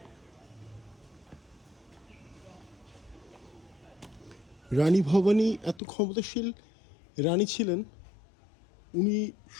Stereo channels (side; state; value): right; drops out; at 5.8 s